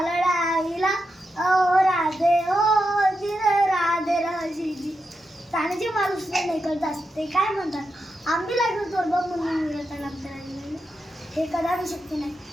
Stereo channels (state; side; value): normal; both; correlation 0.87